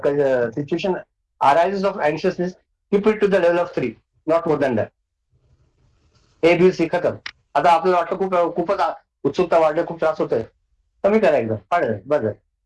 situation arises of anxiousness, keep it to the level of 3, not more than that. A B C खतम. आता आपल्याला वाटतं खूपच उत्सुकता वाढली, खूप त्रास होतोय, कमी करा एकदम, पाडलं बस.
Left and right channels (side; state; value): both; identical; correlation 1.00